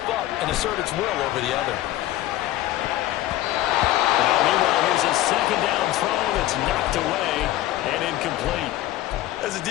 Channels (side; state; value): right; quieter; 15.1 dB